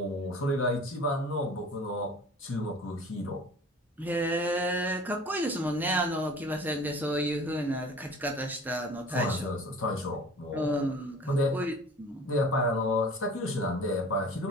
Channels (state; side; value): normal; both; correlation 0.44